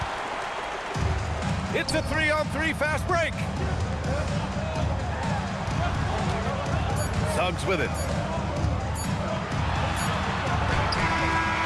It's a 3-on-3 fast break. Suggs with it.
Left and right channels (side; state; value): both; identical; correlation 1.00